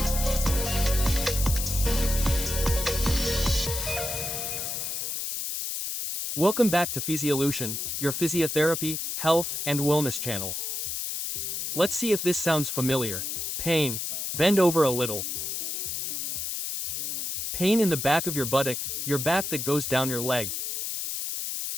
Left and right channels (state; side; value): noise; left; hiss, 3 dB below the sound